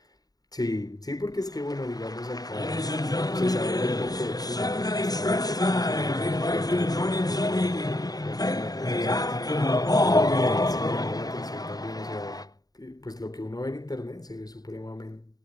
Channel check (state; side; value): late; right; 0.18 ms